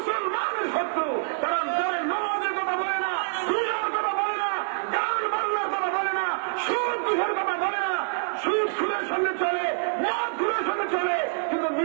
শত্রু। তারা নামাজের কথা বলে না, রোজার কথা বলে না, গান বাজনার কথা বলে না, সুদ ঘুষের কথা বলে না। সুদ খুলের সঙ্গে চলে, মদ খুলের সঙ্গে চলে, কিন্তু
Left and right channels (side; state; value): left; silent; digital silence